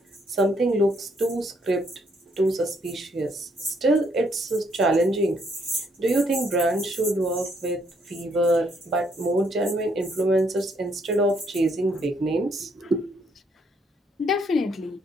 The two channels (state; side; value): normal; both; correlation 0.70